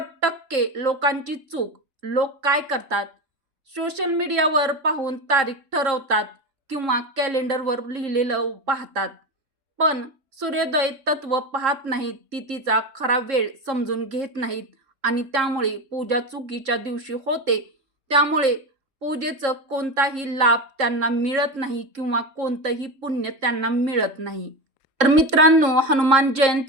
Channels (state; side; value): late; left; 3.7 ms